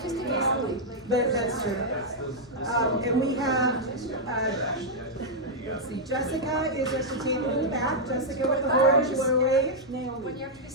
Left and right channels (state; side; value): normal; both; correlation -0.05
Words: But that's true. And we have, let's see, Jessica is at the table in the back. Jessica with the horns, you want to wave?